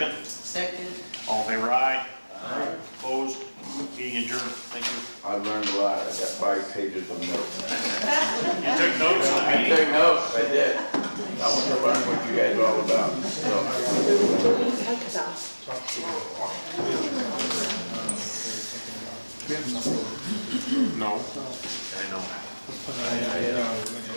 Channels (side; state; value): both; inverted; correlation -1.00